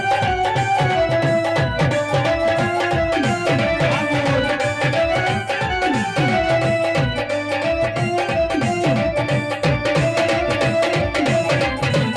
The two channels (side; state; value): both; identical; correlation 1.00